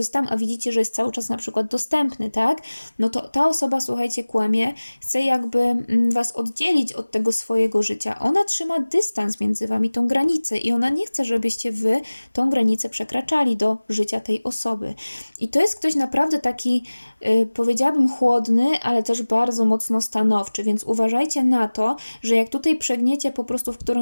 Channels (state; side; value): inverted; both; correlation -1.00